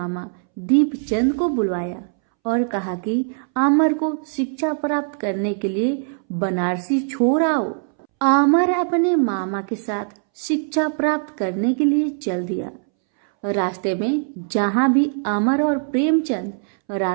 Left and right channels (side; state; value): left; silent; 65 dB below the other